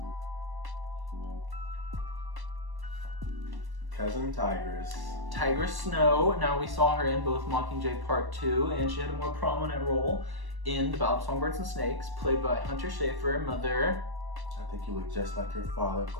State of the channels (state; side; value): late; left; 1.1 ms